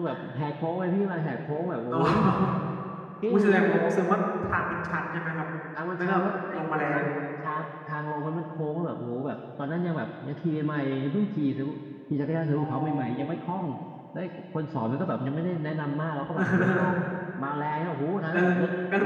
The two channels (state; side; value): identical; both; correlation 1.00